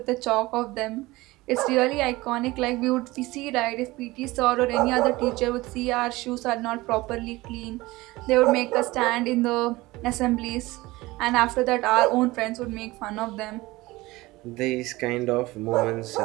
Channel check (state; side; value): quieter; left; 20.1 dB